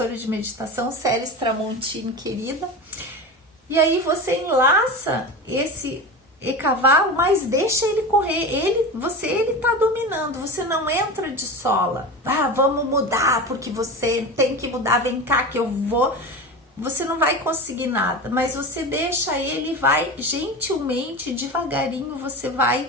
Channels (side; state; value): both; normal; correlation 0.27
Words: de meditação, Célis Tramontini, querida. E aí você enlaça esse cavalo, mas deixa ele correr. Ele tá dominando, você não entra de sola. Ah, vamos mudar, porque você tem que mudar, vem cá que eu vou. Você não vai conseguir nada, mas você deixa ele, vai gentilmente, devagarinho, você vai